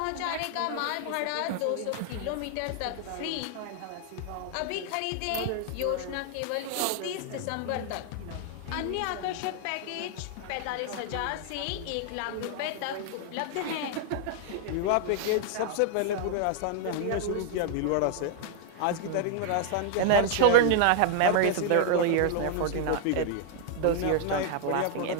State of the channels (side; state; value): both; different; correlation 0.00